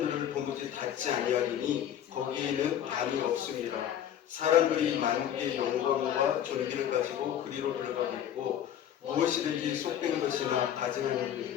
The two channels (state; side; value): quieter; right; 10.2 dB